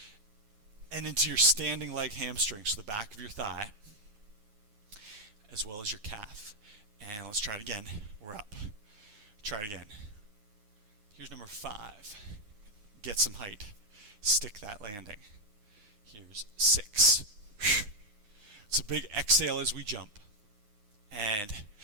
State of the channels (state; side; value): late; left; 9.6 ms